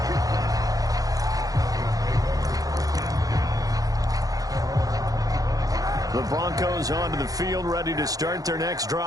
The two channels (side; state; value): left; late; 0.17 ms